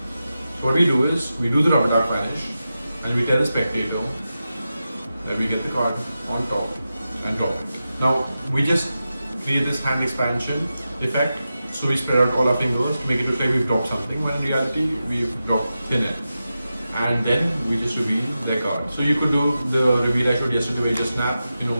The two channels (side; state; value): both; inverted; correlation -0.91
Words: So what we do is, we do the rubber duck vanish, and we tell the spectator that we get the card on top and drop it. Now we just create this hand expansion effect, so we spread out all our fingers to make it look like we've dropped something, when in reality we've dropped thin air. And then we just reveal their card. So you could do the reveal I showed yesterday where you just snap,